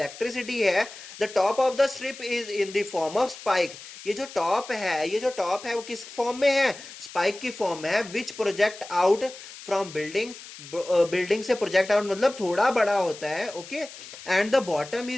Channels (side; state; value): left; noise; hiss, 15 dB below the sound